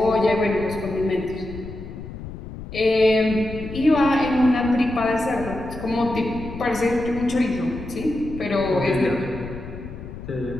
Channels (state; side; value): noise; left; rumble, 11 dB below the sound